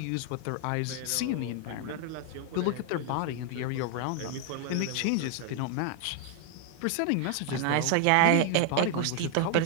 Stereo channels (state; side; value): different; both; correlation 0.00